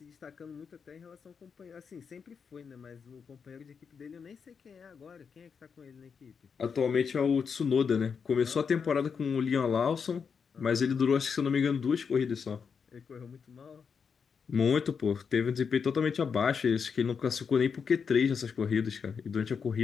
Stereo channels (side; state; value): right; quieter; 6.2 dB